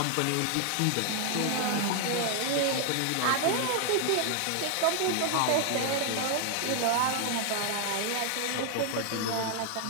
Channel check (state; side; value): different; both; correlation 0.00